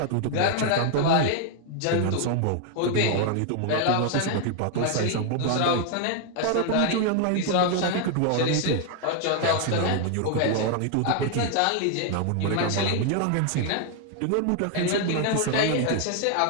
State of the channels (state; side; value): different; both; correlation 0.00